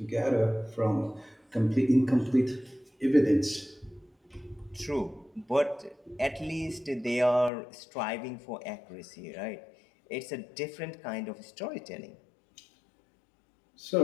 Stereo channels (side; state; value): right; drops out; at 7.5 s